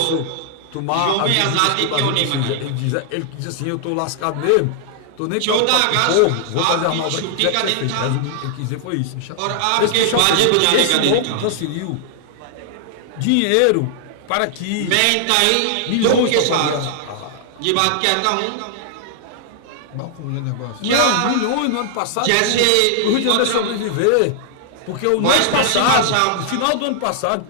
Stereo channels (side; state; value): both; different; correlation -0.01